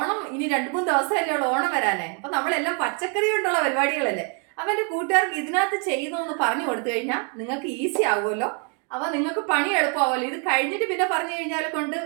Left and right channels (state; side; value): quieter; left; 38.1 dB